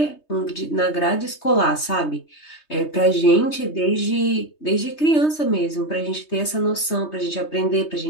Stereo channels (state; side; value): late; right; 3.2 ms